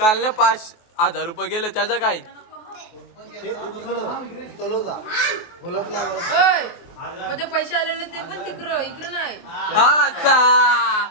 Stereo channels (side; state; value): right; late; 23 ms